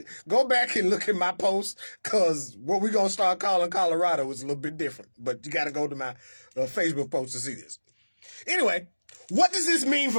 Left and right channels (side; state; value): both; inverted; correlation -1.00